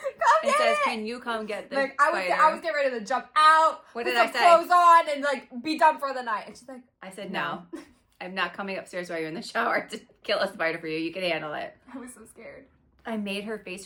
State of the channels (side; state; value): both; identical; correlation 1.00